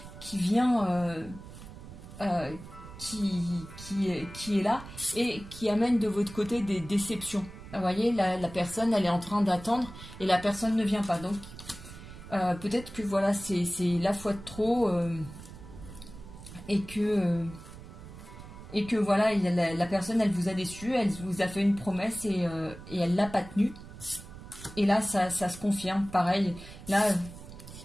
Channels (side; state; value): right; noise; rumble, 15 dB below the sound